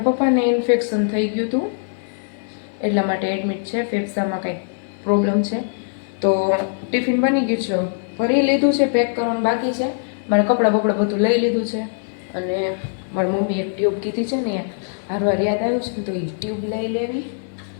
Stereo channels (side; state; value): right; silent; 65 dB below the other